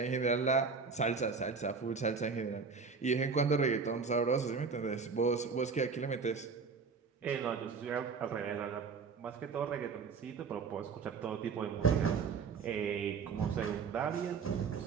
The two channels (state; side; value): quieter; left; 5.2 dB